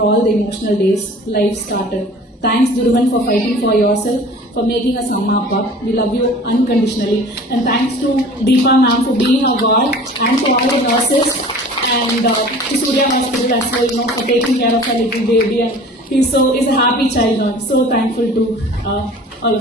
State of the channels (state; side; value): normal; both; correlation 0.44